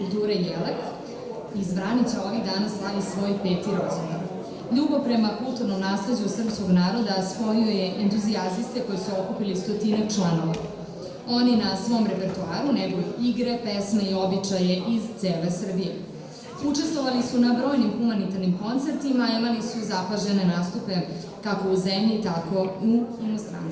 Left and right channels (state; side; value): identical; both; correlation 1.00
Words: Jelek iz Vranića ovih dana slavi svoj 5. rođendan. Ljubav prema kulturnom nasleđu srpskog naroda spojio je entuzijaziste koji su okupili 100 članova. Oni na svom repertoaru neguju igre, pesme i običaje iz cele Srbije. Učestvovali su na brojnim humanitarnim koncertima, a imali su zapažene nastupe kako u zemlji, tako i u